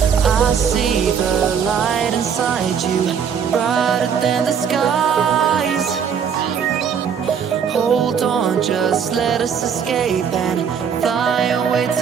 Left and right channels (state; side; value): quieter; left; 7.3 dB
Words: I see the light inside you, brighter than the skies. Hold on, just let us escape and fly away